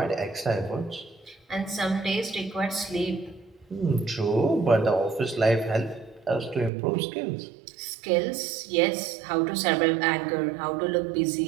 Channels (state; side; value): drops out; left; at 6.7 s